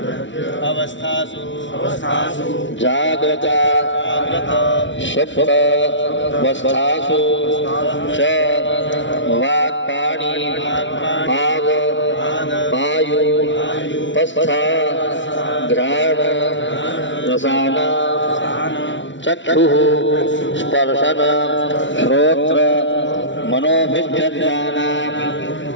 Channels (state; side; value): late; right; 0.55 ms